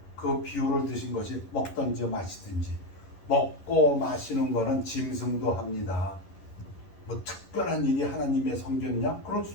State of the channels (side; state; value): right; late; 11 ms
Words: 그 비유를 드신 것이 먹든지 마시든지. 먹고 마시는 거는 짐승도 합니다. 뭐 특별한 일이 하나님의 성전이냐? 그럴